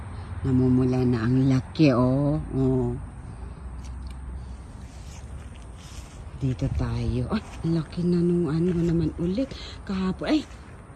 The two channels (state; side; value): identical; both; correlation 1.00